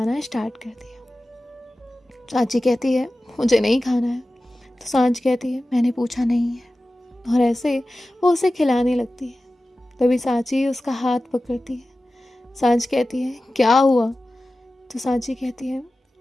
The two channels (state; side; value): normal; both; correlation 0.95